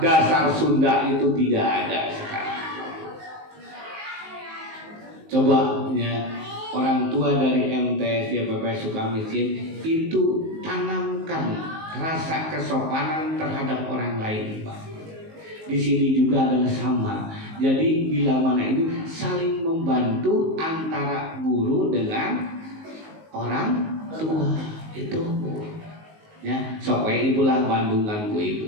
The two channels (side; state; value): left; late; 19 ms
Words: Sunda itu tidak ada sekarang. Coba ya orang tua dari MTS YPP Sukamiskin itu tanamkan rasa kesopanan terhadap orang lain, Pak. Di sini juga adalah sama. Jadi bila mana ini saling membantu antara guru dengan orang tua itu, ya. Sok we ibu lah bandungan ku